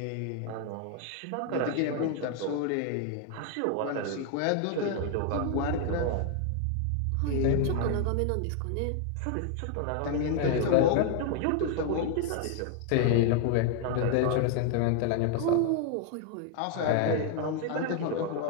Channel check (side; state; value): both; different; correlation 0.00